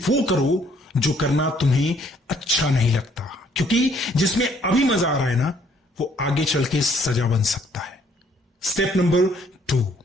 वो करो जो करना तुम्हें अच्छा नहीं लगता, क्योंकि जिसमें अभी मजा आ रहा है ना, वो आगे चल के सजा बन सकता है। Step number 2,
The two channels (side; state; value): both; normal; correlation 0.64